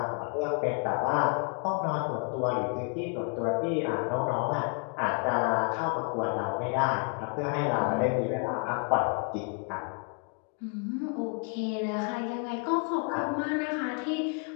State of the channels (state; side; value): quieter; right; 38.2 dB